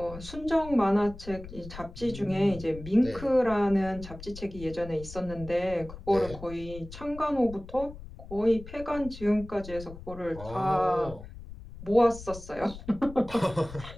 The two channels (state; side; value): noise; left; rumble, 14 dB below the sound